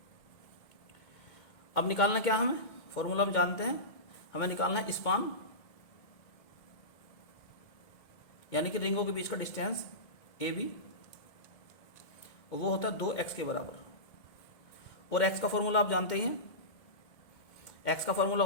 अब निकालना क्या हमें, फॉर्मूला हम जानते हैं, हमें निकालना है स्पान, यानी कि रिंगों के बीच का डिस्टेंस ए बी, और वो होता है 2x के बराबर। और x का फॉर्मूला आप जानते ही हैं, x का फॉर्मूला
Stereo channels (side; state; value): right; late; 2.2 ms